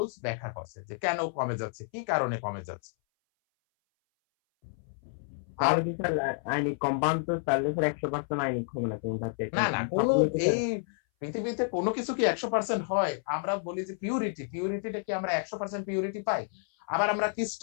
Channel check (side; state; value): right; silent; 58 dB below the other